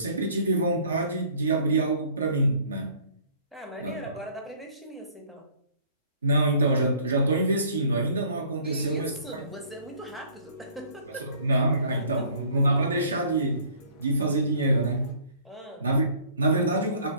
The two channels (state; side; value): inverted; both; correlation -0.56